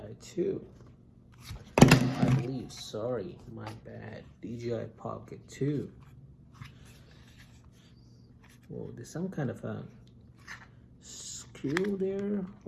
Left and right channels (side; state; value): both; identical; correlation 1.00